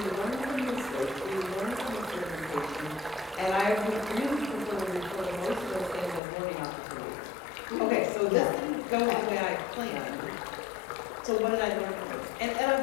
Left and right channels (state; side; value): drops out; right; at 6.2 s